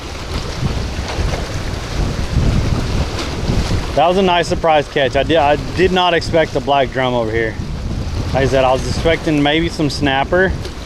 That was a nice surprise catch. I did not expect the black drum over here. Like I said, I was expecting maybe some snapper,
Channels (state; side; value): identical; both; correlation 1.00